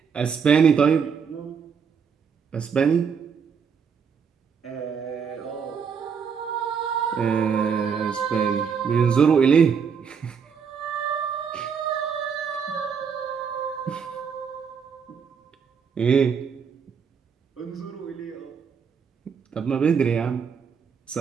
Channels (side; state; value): left; quieter; 6.5 dB